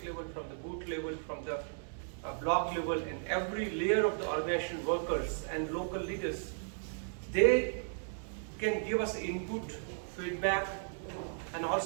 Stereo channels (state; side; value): silent; left; 54 dB below the other